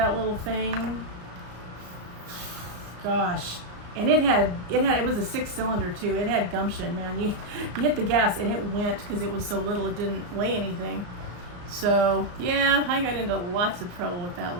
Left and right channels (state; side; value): late; left; 34 ms